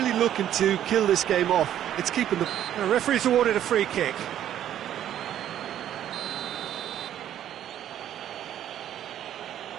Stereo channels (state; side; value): quieter; left; 11.1 dB